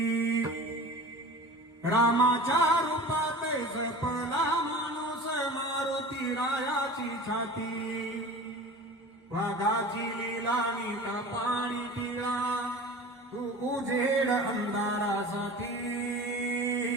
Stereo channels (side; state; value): both; normal; correlation 0.37